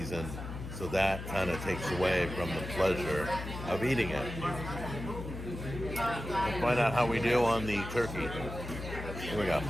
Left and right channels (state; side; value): noise; left; hum, 8 dB below the sound